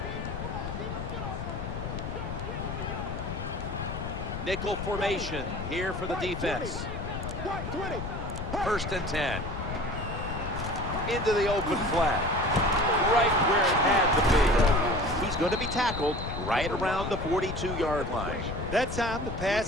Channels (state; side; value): noise; left; rumble, 6 dB below the sound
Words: Nickel formation here for the defense. 1st and 10. Into the open flat. Right where it had to be. He's going to be tackled right around the 42-yard line. That time the